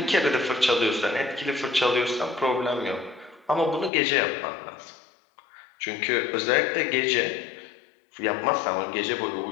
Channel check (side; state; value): right; drops out; at 3.9 s